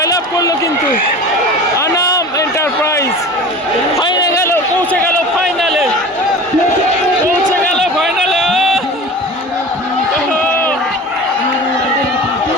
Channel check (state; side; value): normal; both; correlation 0.36